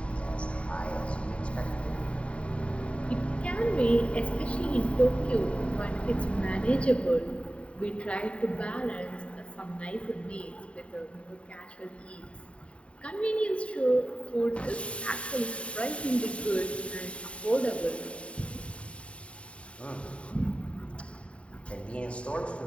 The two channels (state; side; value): late; right; 0.062 ms